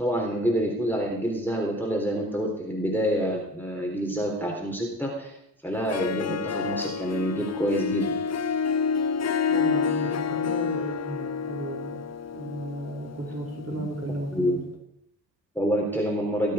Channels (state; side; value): normal; both; correlation 0.30